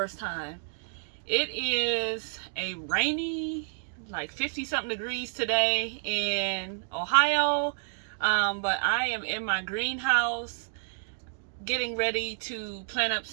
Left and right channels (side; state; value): left; silent; digital silence